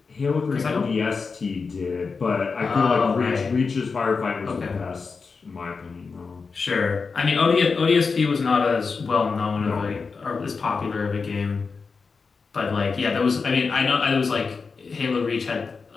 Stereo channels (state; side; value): quieter; right; 4.8 dB